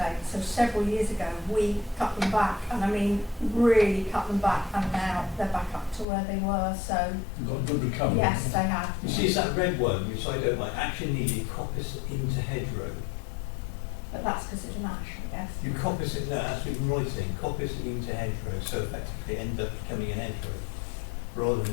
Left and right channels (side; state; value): right; drops out; at 6.1 s